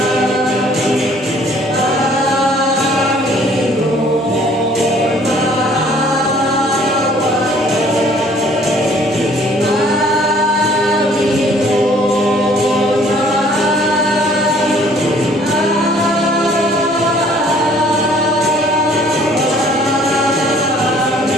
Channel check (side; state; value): both; normal; correlation 0.57